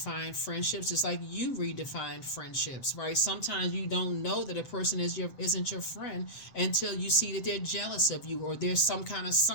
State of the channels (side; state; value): right; late; 7.6 ms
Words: friendships, just like you redefine friendships, right? Sometimes you don't know that a person isn't your friend until you see that they're jealous of you, or there's some kind of